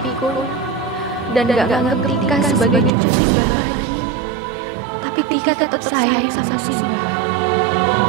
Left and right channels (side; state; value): left; drops out; at 2.9 s